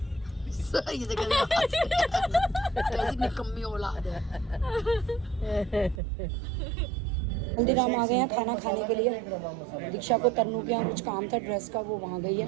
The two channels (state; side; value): drops out; left; at 6.0 s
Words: ये देखो कैसी निकम्मी औलाद है। हल्दीराम आ गए हैं खाना खाने के लिए। दीक्षा को तन्नू के यहाँ कुछ काम था ड्रेस का, वो वहाँ गई है